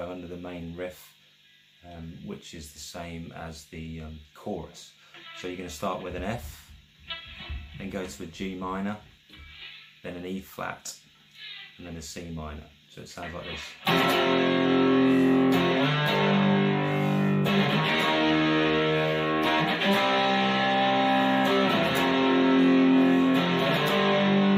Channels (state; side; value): identical; both; correlation 1.00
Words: under the main riff, which is the same as the chorus. So you're going to start with an F, then go to a G minor, then an E flat, and then a C minor. So it sounds like this.